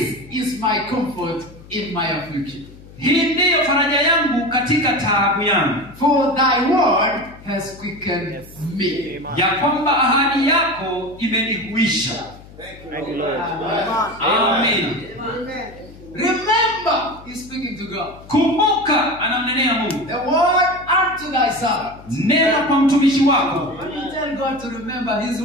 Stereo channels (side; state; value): left; noise; hum, 20 dB below the sound